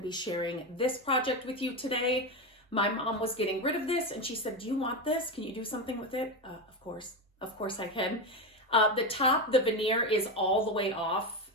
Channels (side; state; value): both; normal; correlation 0.15